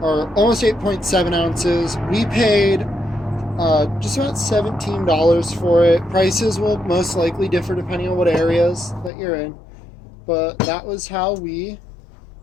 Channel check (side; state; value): right; drops out; at 9.1 s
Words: or almost 8.7 ounces. We paid just about $17 for it. Prices will most likely differ depending on what areas that you're in, but that was how we